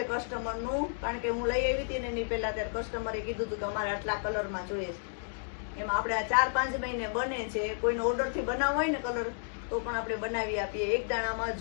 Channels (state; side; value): silent; right; digital silence